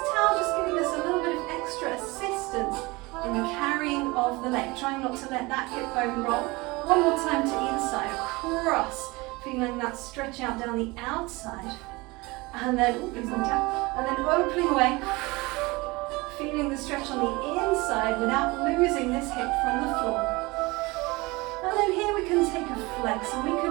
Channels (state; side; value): quieter; left; 23.4 dB